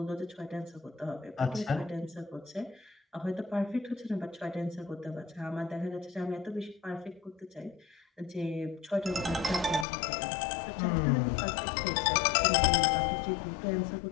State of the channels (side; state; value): right; drops out; at 9.9 s